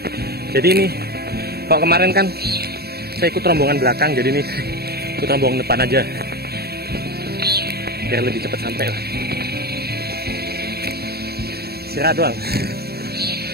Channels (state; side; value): late; left; 0.46 ms